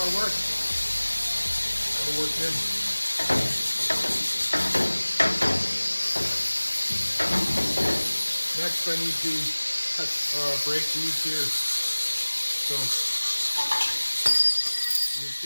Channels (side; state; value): both; inverted; correlation -1.00